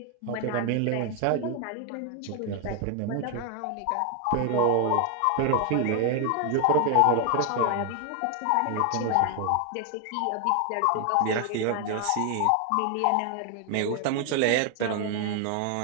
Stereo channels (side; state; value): both; different; correlation 0.01